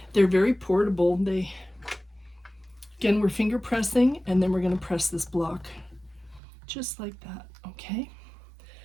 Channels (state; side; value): drops out; left; at 6.4 s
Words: They're very portable. Again, we're finger pressing, and then we're going to press this block just like that. Okay.